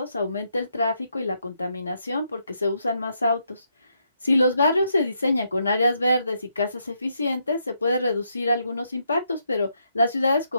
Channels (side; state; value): both; inverted; correlation -0.78